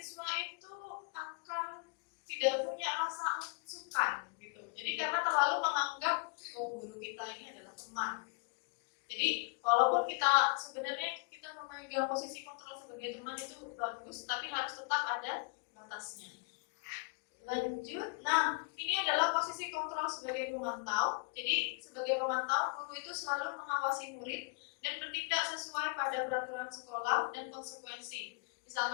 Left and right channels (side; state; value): right; quieter; 32.8 dB